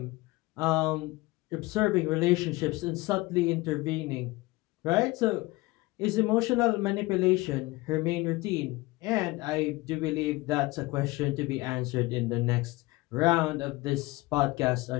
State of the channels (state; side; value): quieter; right; 21.5 dB